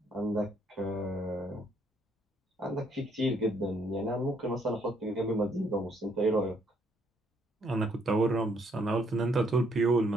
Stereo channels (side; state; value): both; normal; correlation 0.69